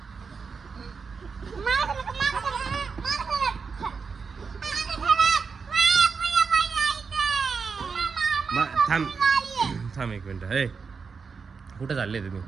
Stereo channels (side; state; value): left; quieter; 5.3 dB